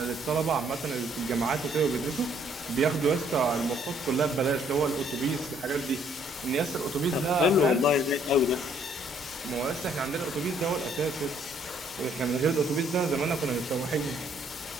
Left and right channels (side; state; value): both; normal; correlation 0.65